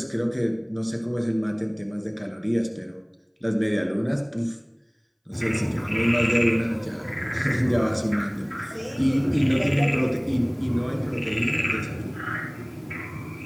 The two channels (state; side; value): identical; both; correlation 1.00